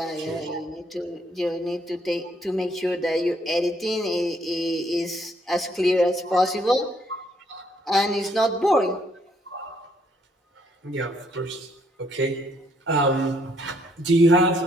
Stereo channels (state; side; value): normal; both; correlation 0.69